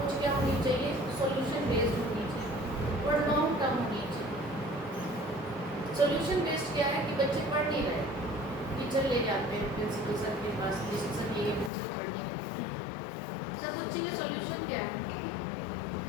क्या होनी चाहिए, सॉल्यूशन बेस्ड होनी चाहिए और लॉन्ग टर्म होनी चाहिए। सॉल्यूशन बेस्ड क्या है कि बच्चे पढ़ नहीं रहे, टीचर ले जाते हैं प्रिंसिपल सर के पास, सर ये बच्चे पढ़ नहीं रहे, सर बच्चे का सॉल्यूशन क्या है?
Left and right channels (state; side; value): drops out; right; at 11.7 s